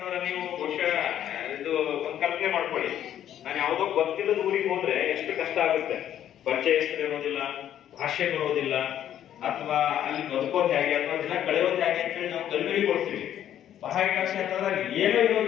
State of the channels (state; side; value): quieter; right; 10.8 dB